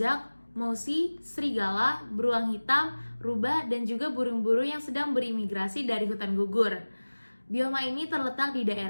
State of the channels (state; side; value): inverted; both; correlation -1.00